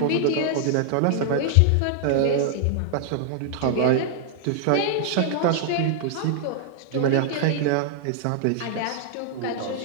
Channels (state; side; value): different; both; correlation 0.00